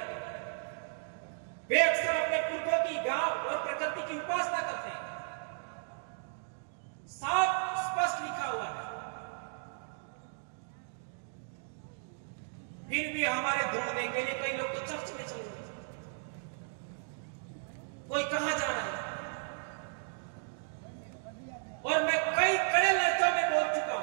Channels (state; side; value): silent; left; digital silence